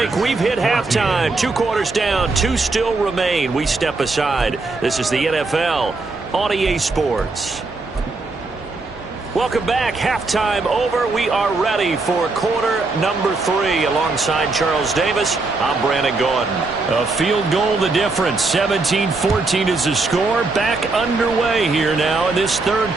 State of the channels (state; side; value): quieter; left; 3.6 dB